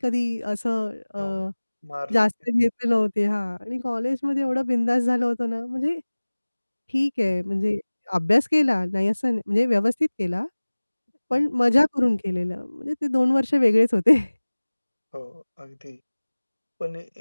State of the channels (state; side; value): inverted; both; correlation -1.00